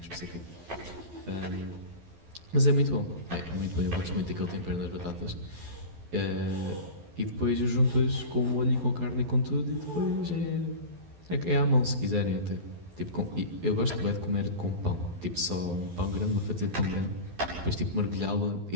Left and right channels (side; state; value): left; late; 12 ms